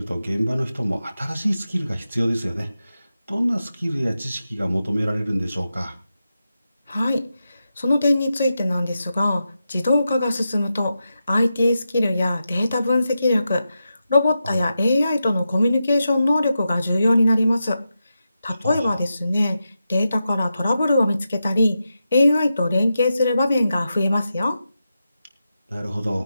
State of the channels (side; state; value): both; inverted; correlation -0.89